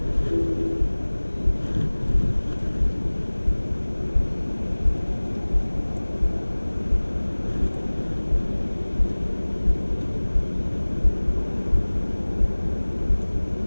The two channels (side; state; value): both; inverted; correlation -1.00